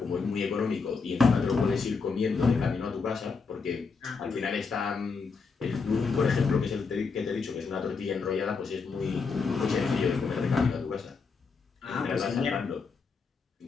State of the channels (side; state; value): right; quieter; 4.9 dB